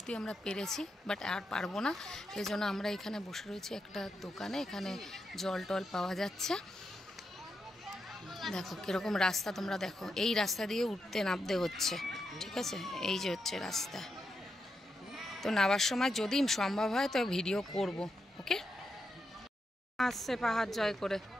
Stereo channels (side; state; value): both; normal; correlation 0.85